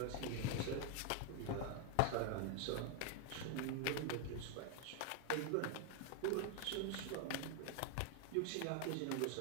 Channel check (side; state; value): both; different; correlation 0.00